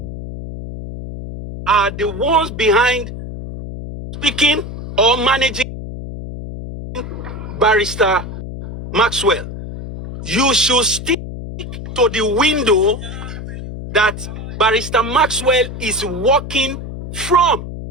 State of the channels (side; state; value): left; noise; hum, 9 dB below the sound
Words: are the ones behind speaking or managing Barrister Maxwell. You should stick to the window that Barrister Maxwell is working from.